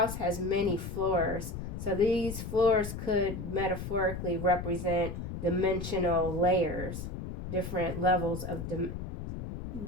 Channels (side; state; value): left; noise; rumble, 6 dB below the sound